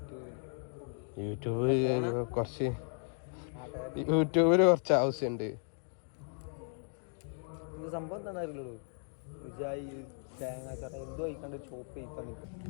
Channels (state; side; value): silent; right; 54 dB below the other